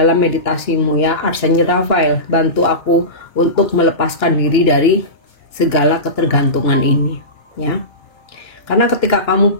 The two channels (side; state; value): right; late; 2.9 ms